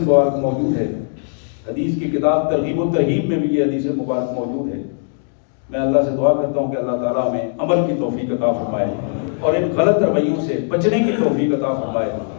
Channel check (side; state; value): right; silent; digital silence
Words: موجود ہے. حدیث کی کتاب ترغیب و ترہیب میں بھی یہ حدیث مبارک موجود ہے. میں اللہ سے دعا کرتا ہوں کہ اللہ تعالیٰ ہمیں عمل کی توفیق عطا فرمائے اور ان غلط رویوں سے بچنے کی توفیق عطا فرمائے